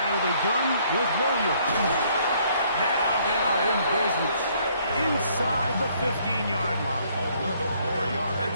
of the gun with Williams. Now they are in business inside the 15-yard line. 11 more yards.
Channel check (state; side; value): inverted; both; correlation -0.65